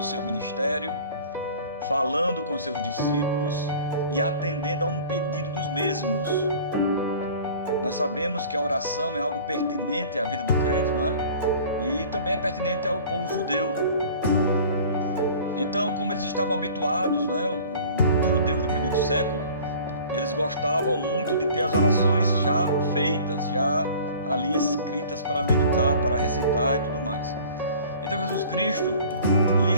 seu ministério, falando com seus discípulos e atendendo a um pedido dos mesmos. Nós sabemos que a oração é algo pertinente à vida do crente, não é? E também é pertinente ao povo judeu. Então, como eles estavam habituados, não é? Os judeus do primeiro século, eles gostavam muito de ter as orações já feitas, já ali escritas para meditar, para recitar e tudo mais. Então Jesus Cristo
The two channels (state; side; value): inverted; both; correlation -0.46